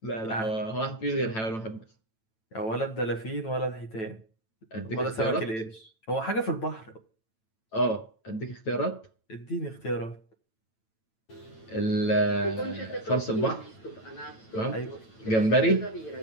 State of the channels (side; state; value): right; late; 9.0 ms